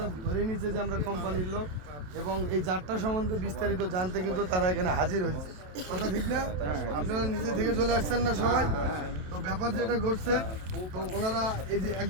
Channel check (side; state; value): left; late; 27 ms